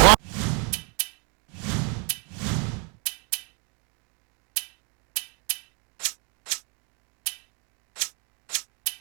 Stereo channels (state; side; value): quieter; left; 34.7 dB